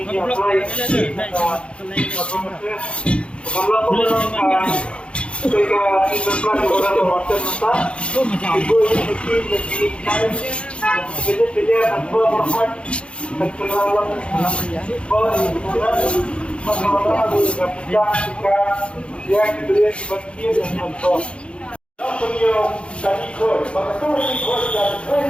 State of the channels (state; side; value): late; right; 0.058 ms